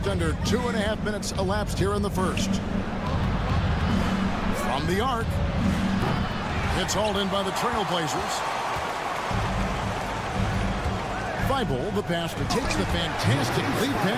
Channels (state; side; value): identical; both; correlation 1.00